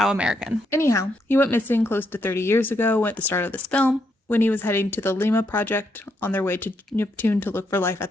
American. Anyhow, he went missing close to 30 years ago at the start of this film, when he was heading to the Lima Project on their way to Neptune to look for life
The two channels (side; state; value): both; normal; correlation 0.78